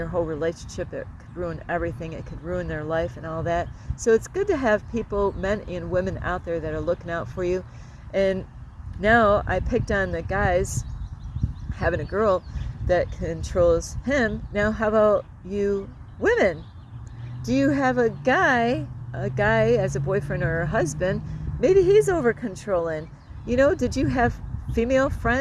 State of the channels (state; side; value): identical; both; correlation 1.00